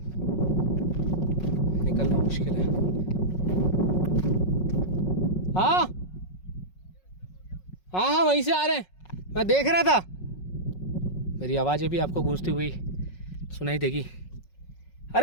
निकलना मुश्किल है। हाँ हाँ हाँ वहीं से आ रहे हैं, मैं देख रहा था। मेरी आवाज़ें भी आपको गूंजती हुई सुनाई देगी।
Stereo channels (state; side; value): late; right; 5.4 ms